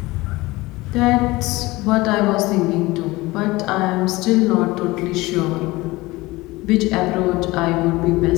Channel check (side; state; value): right; quieter; 20.7 dB